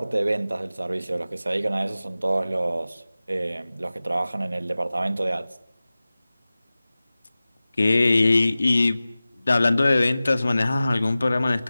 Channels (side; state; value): both; inverted; correlation -0.97